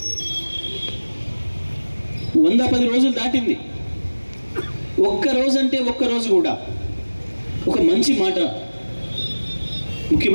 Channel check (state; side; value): inverted; both; correlation -1.00